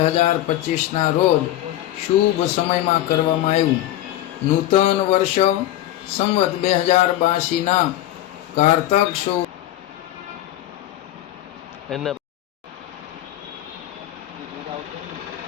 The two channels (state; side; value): quieter; right; 13.8 dB